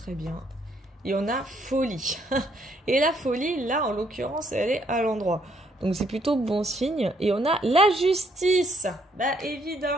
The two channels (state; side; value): normal; both; correlation 0.69